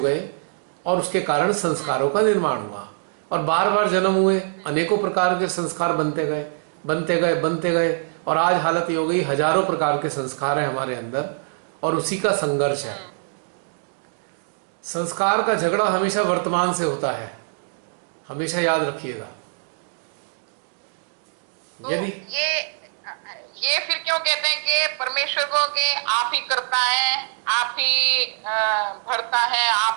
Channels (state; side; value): silent; left; digital silence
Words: और उसके कारण संस्कारों का निर्माण हुआ, और बार बार जन्म हुए, अनेकों प्रकार के संस्कार बनते गए बनते गए बनते गए, और आज हालत ये हो गई हजारों प्रकार के संस्कार हैं हमारे अंदर, और उसी का संघर्ष है। संस्कार का झगड़ा हमेशा वर्तमान से होता है, हमेशा याद रखिएगा। तो यदि ये फिर क्यों कहते हैं कि परमेश्वर को कि आप ही करता है, आप ही भरता है,